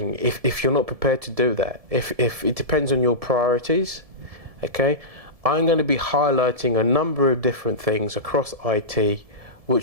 If you're not prepared to do that, if it depends on your priorities, okay, I'm going to be highlighting a number of different things across IT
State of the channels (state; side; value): late; left; 1.7 ms